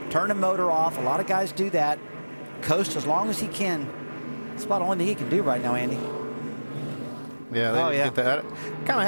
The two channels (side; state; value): both; inverted; correlation -1.00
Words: turn the motor off. A lot of guys do that. Coast as long as he can. That's about the only thing he can do right now, Andy. Yeah, they didn't get that. I kind of